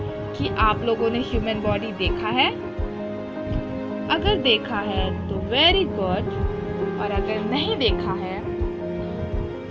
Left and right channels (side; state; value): both; identical; correlation 1.00